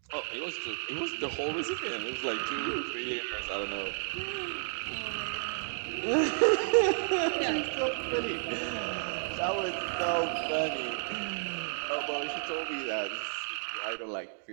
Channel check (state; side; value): silent; left; digital silence